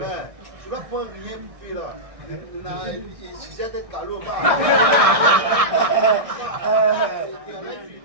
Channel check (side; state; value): left; late; 1.6 ms